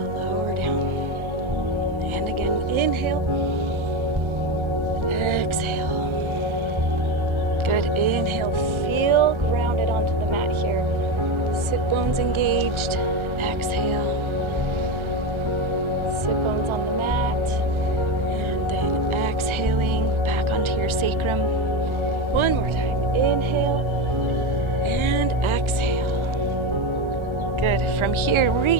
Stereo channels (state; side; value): late; left; 1.4 ms